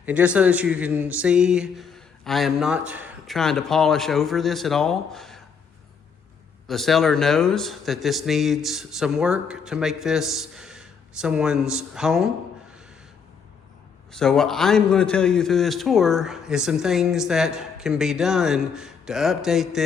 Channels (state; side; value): quieter; right; 6.1 dB